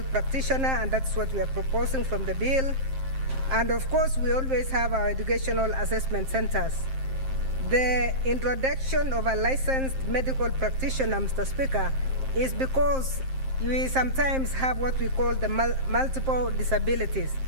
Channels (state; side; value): late; left; 7.6 ms